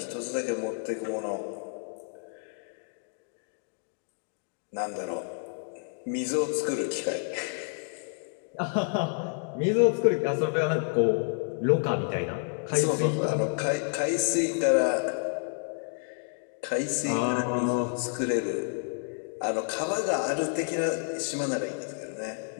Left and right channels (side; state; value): right; silent; 56 dB below the other